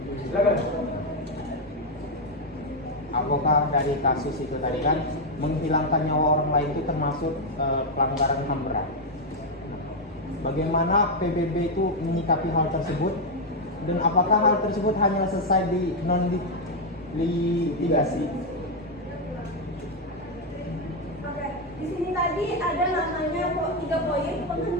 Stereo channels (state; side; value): normal; both; correlation 0.02